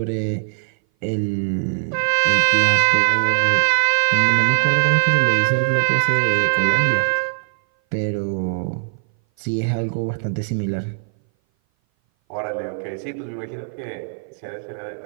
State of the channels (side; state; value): left; silent; 59 dB below the other